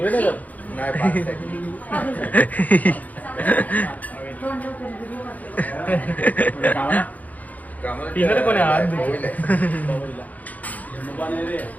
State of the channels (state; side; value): late; right; 0.078 ms